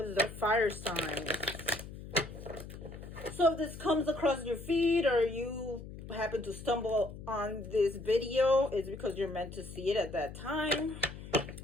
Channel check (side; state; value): left; noise; hum, 12 dB below the sound